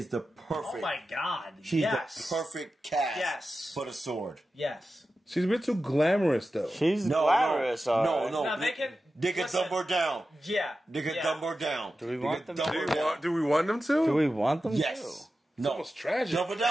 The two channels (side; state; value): both; normal; correlation 0.93